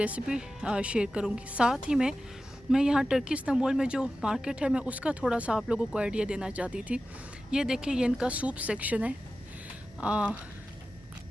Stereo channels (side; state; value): both; normal; correlation 0.94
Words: शेयर करूँगी। साथ ही में मैं यहाँ टर्की इस्तांबुल में जो मार्केट है मैं उसका थोड़ा सा आप लोगों को आइडिया देना चाहती थी। ये देखिए, ये इनका सूप सेक्शन है।